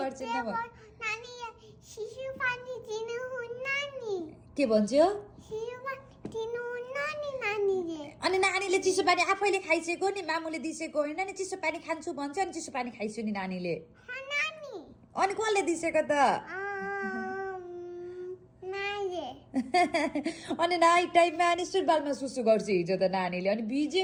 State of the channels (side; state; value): both; identical; correlation 1.00